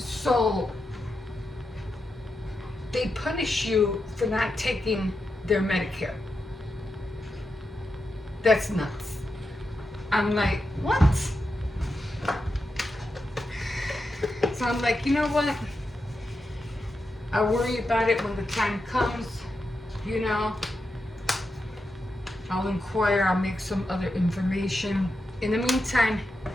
they punish you for not taking their Medicare. That's nuts. I'm like, what? So I'm like, you know what? I'll worry about it when the time comes, I'll inquire, I'll make some other information. In the meantime,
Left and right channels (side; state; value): both; normal; correlation 0.87